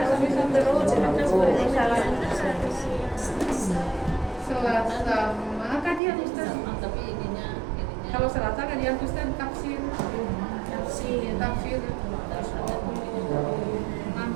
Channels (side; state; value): left; drops out; at 6.0 s